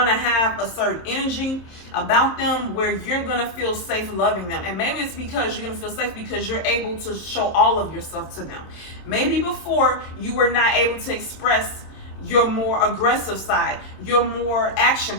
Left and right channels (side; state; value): right; late; 27 ms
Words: to have a certain energy about them where you're going to feel safe loving them. And maybe it's because you're going to feel safe because you're able to show all of yourself to them. Maybe before you were not able to express your more aggressive side, your more action